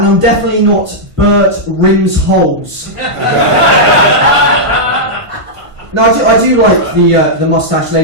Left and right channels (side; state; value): left; late; 1.5 ms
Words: definitely not Bert Rimsholes. No, I do like the moustache,